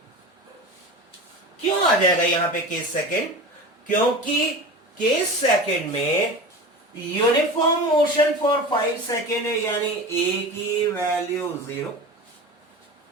क्यों आ जाएगा यहां पे केस सेकेंड? क्योंकि केस सेकेंड में यूनिफॉर्म मोशन फॉर 5 सेकेंड है, यानी ए की वैल्यू 0।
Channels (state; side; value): normal; both; correlation 0.32